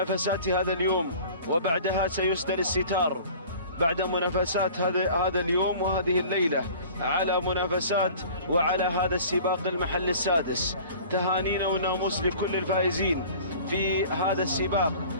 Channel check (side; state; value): both; inverted; correlation -0.45